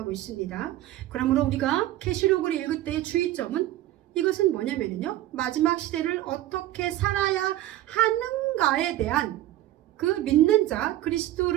있습니다. 그러므로 우리가 계시록을 읽을 때의 주의점은 이것은 뭐냐면요, 마지막 시대를 어떻게 살아야 하는가에 대한 그 믿는 자,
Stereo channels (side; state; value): left; quieter; 14.4 dB